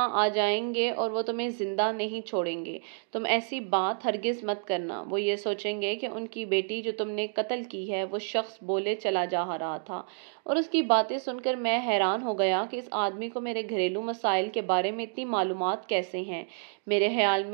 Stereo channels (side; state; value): left; silent; digital silence